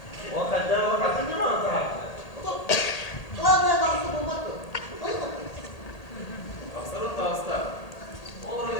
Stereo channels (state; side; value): late; right; 1.8 ms